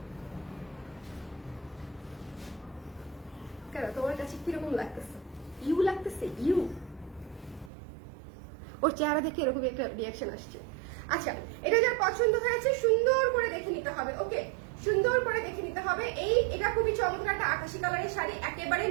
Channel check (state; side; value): drops out; left; at 7.7 s